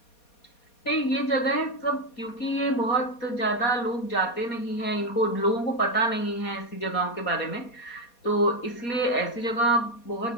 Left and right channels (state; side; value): late; right; 4.2 ms